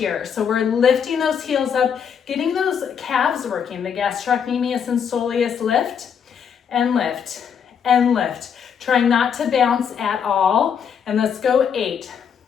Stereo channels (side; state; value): right; quieter; 7.5 dB